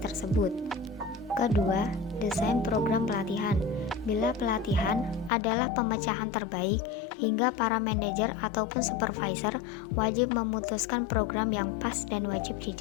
Kedua, desain program pelatihan. Bila pelatihan adalah pemecahan terbaik, hingga para manajer ataupun supervisor wajib memutuskan program yang pas dan wajib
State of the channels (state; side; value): drops out; right; at 5.3 s